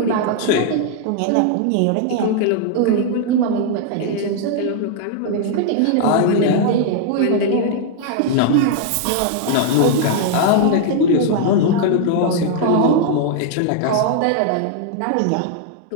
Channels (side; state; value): both; different; correlation -0.01